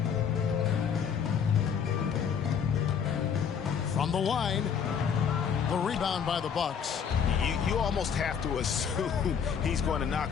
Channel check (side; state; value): right; quieter; 7.3 dB